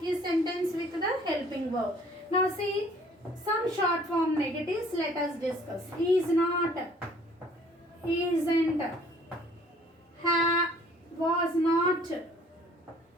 a sentence with the helping verb? Now see some short form negatives. Let us discuss. Is not, isn't, was not,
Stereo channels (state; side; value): normal; both; correlation 0.55